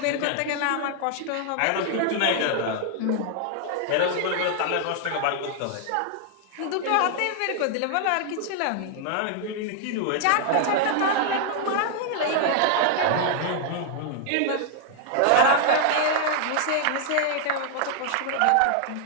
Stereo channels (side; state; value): both; different; correlation 0.00